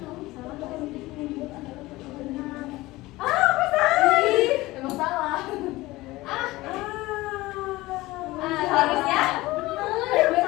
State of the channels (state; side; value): quieter; right; 19.3 dB